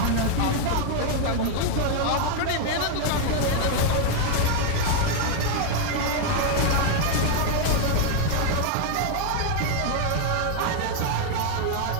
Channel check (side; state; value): both; different; correlation 0.00